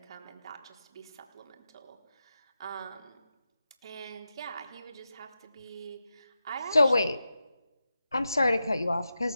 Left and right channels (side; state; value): both; inverted; correlation -0.90